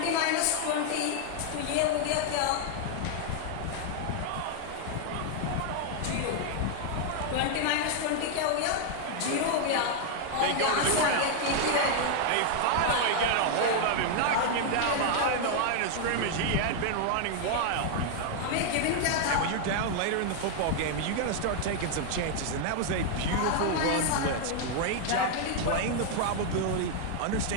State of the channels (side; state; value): both; different; correlation 0.00